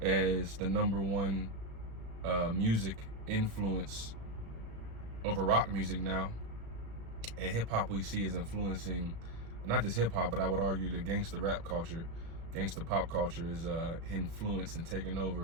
as the #1 music influence over rock music now. And hip hop, we see, is influencing not just hip hop, but I would argue the gangster rap culture, gangster pop culture is influenced and taken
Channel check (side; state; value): left; late; 35 ms